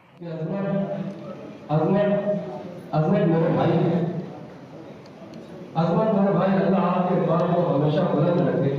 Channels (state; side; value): identical; both; correlation 1.00